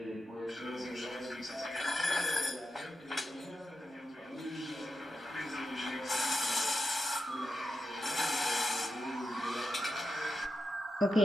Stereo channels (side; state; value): both; normal; correlation 0.89